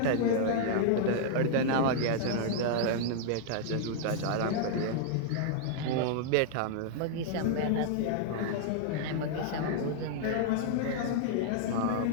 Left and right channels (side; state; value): both; different; correlation -0.01